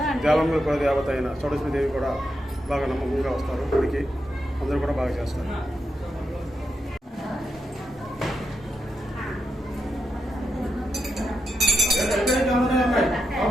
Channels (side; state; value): both; normal; correlation 0.85